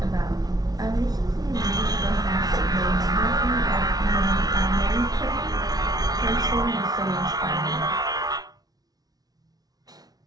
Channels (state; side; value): late; left; 0.19 ms